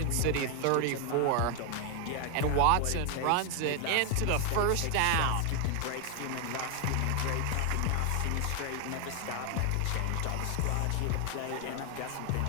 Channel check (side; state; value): both; different; correlation 0.00